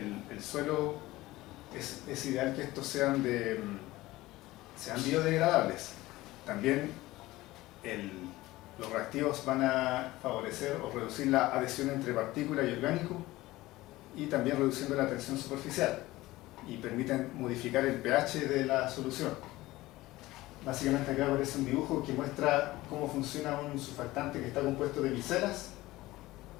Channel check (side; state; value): right; quieter; 18.2 dB